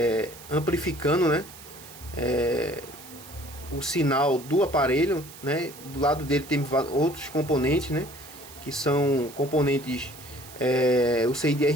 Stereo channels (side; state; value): right; noise; hiss, 18 dB below the sound